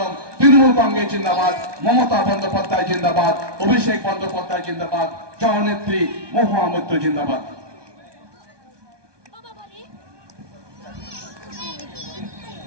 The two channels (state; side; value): late; left; 1.2 ms